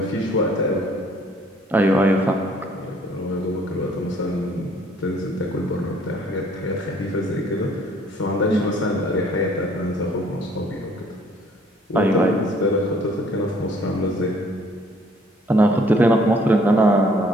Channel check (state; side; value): normal; both; correlation 0.60